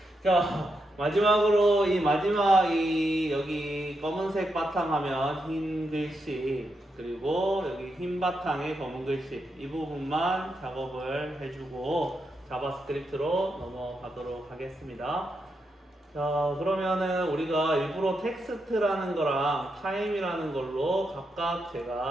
자, 마지막으로 이 여기 검은색 바탕하면 흰 글씨, 그리고 여기 흰 바탕에 검은 글씨, 이 부분만 작업을 해주고 자바스크립트로 넘어가도록 하겠습니다. 자, 그러면은 우리가 일부러 텍스트라는 거랑 타임이라는 걸로 각각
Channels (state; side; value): normal; both; correlation 0.84